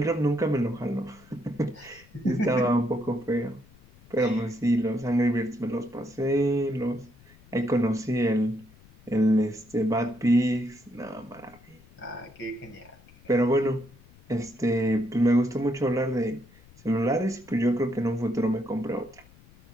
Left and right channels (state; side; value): noise; left; rumble, 25 dB below the sound